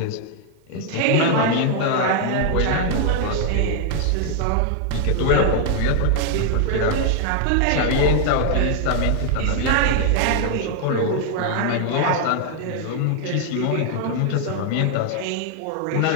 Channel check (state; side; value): different; both; correlation 0.00